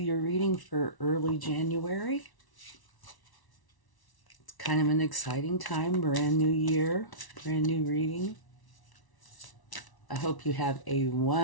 reading for early January. It's kind of an exciting time, brand new year, brand new reading. I hope you have a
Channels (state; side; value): late; right; 1.1 ms